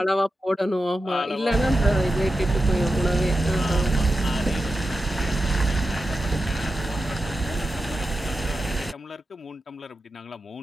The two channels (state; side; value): normal; both; correlation 0.91